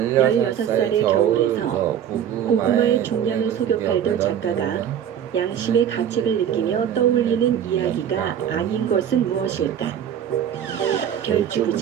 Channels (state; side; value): quieter; left; 9.4 dB